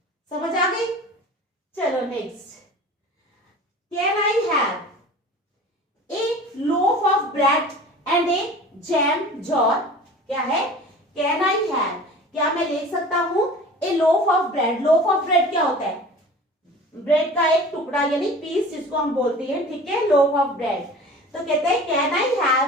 समझ आ गई। चलो next, can I have a loaf of bread and a jam jar। क्या है, can I have, क्या मैं ले सकता हूं, a loaf of bread. Loaf of bread क्या होता है, ब्रेड का एक टुकड़ा यानी पीस जिसको हम बोलते हैं। ठीक है, लोफ ऑफ ब्रेड। तो कहते हैं can I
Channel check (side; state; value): both; normal; correlation 0.41